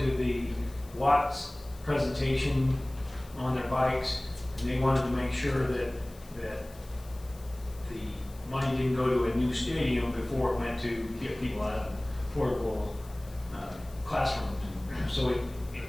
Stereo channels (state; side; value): noise; left; hiss, 23 dB below the sound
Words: the Watts presentation on their bikes, and they wanted to make sure that the money didn't go to a new stadium before it went to get people out of portable classrooms. So